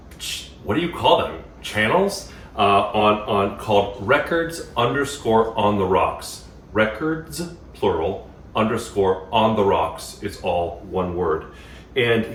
what do you call them? Channels? Called records_on the rocks. Records, plural, _on the rocks. It's all one word. And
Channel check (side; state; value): both; identical; correlation 1.00